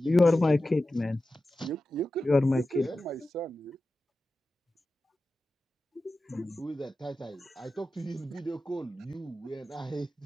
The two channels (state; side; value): normal; both; correlation 0.93